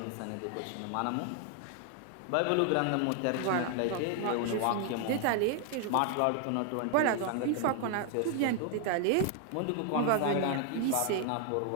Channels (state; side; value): different; both; correlation 0.00